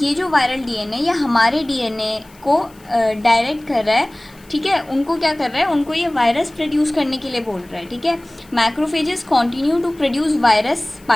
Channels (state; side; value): noise; left; hiss, 28 dB below the sound